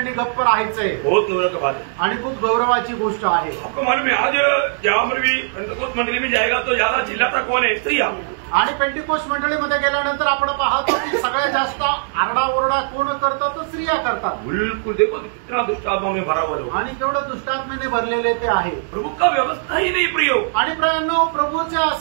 गप्प राहायचंय. बहुत गौरव की बात है. आणि खूप गौरवाची गोष्ट आहे. आपको मालूम है आज जहां पर भी पेंटेकोस्ट मंडली में जाएगा तो ज्यादा चिल्लाता कौन है? स्त्रियां. आणि पेंटिकोस्ट मंडळीमध्ये गेल्यानंतर आपण पाहतो की सगळ्यात जास्त आरडाओरडा कोण करतो? तो स्त्रिया करतात. बिल्कुल. देखो कितना दुष्टात्मा में भरा हुआ है. आणि केवढं दुष्टात्मेने भरलेले ते आहे. प्रभु का व्यवस्था ही नहीं प्रियो. आणि प्राण्यांनो प्रभूच्या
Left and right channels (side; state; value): left; silent; digital silence